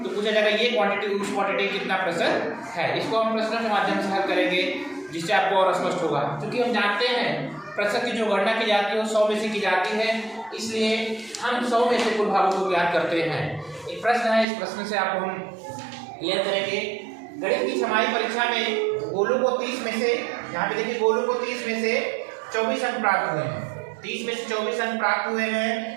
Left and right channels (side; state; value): left; drops out; at 14.5 s